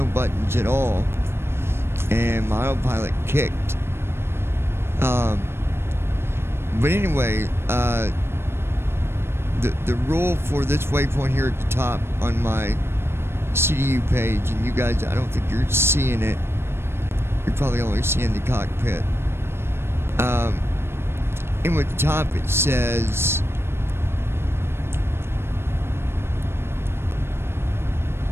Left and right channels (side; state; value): left; late; 0.12 ms